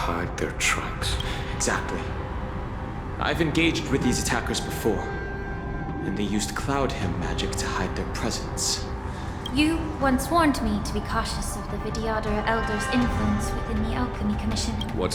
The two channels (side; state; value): both; identical; correlation 1.00